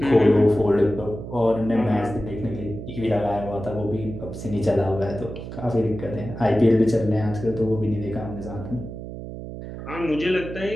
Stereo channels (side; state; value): right; noise; hum, 10 dB below the sound